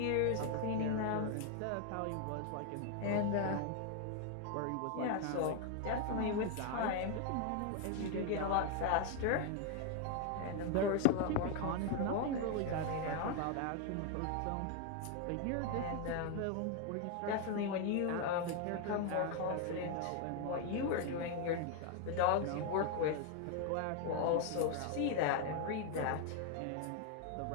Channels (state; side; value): different; both; correlation 0.01